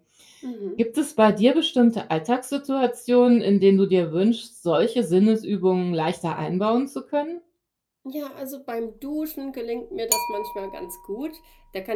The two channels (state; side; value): identical; both; correlation 1.00